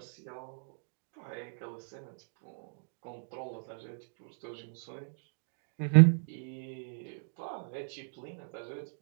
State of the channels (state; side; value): silent; left; digital silence